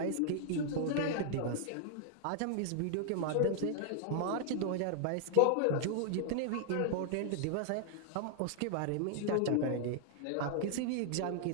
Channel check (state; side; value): different; both; correlation -0.01